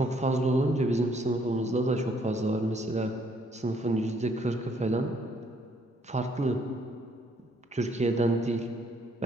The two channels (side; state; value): both; normal; correlation 0.67